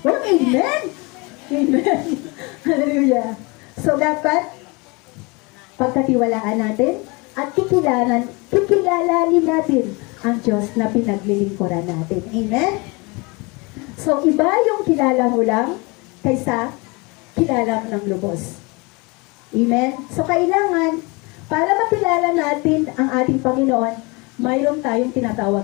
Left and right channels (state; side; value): quieter; right; 27.4 dB